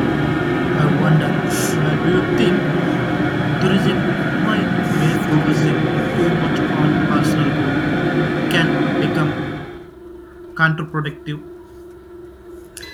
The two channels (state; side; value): identical; both; correlation 1.00